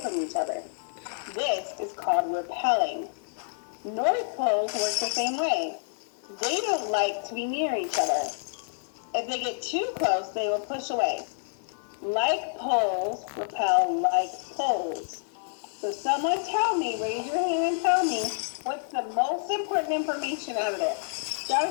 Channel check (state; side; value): silent; right; 59 dB below the other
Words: from each other. This is called repelling. North poles work the same way. They don't like to be near each other. If they get too close, they will push away. Like poles repel like poles. So someone tell me, raise your hand and tell me, what's the most important information out of this?